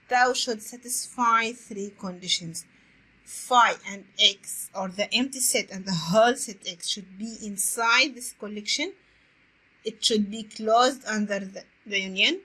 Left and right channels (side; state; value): both; identical; correlation 1.00